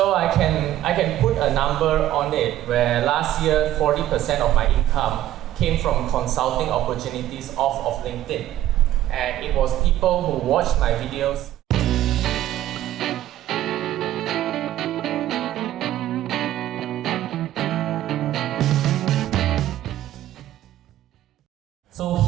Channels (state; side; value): quieter; left; 13.2 dB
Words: I can put a number on it where last year 40% of my income came from consulting opportunities off of LinkedIn. And it was people who watched my videos. So